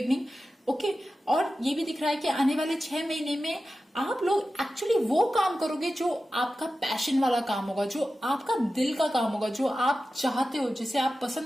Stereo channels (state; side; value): normal; both; correlation 0.93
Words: ओके। और ये भी दिख रहा है कि आने वाले 6 महीने में आप लोग एक्चुअली वो काम करोगे जो आपका पैशन वाला काम होगा, जो आपका दिल का काम होगा, जो आप चाहते हो, जिसे आप